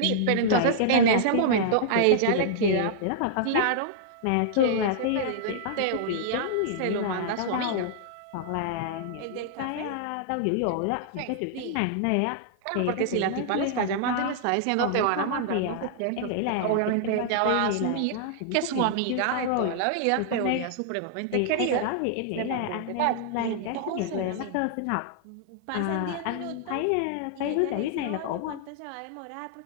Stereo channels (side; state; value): both; different; correlation -0.01